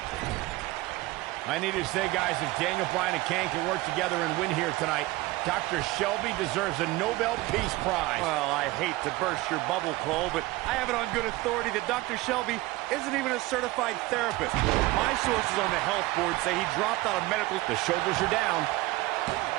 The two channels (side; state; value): left; quieter; 19.6 dB